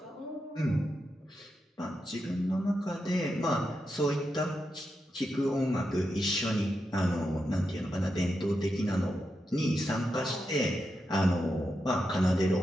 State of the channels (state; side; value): normal; both; correlation 0.86